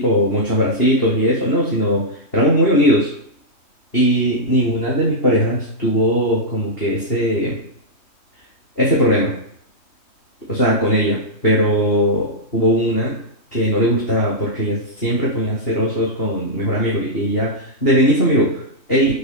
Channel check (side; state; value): right; late; 3.1 ms